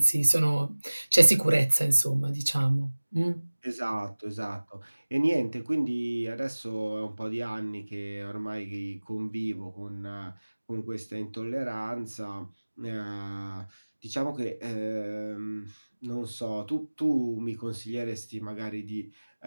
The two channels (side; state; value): both; inverted; correlation -1.00